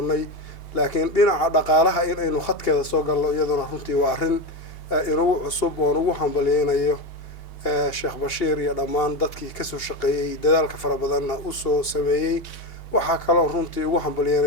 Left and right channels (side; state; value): right; late; 2.8 ms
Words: laakiin dhinaca dhaqaalaha in aynu khadkeeda soo galno iyaduna runtii waa arrin inugu cusub oon ugu hambalyeynayo sheekh bashiir iyo dhammaan dadkii kasoo shaqeeyey dadaalka fara badanna u soo sameeyey waxaa kaloo runtii ugu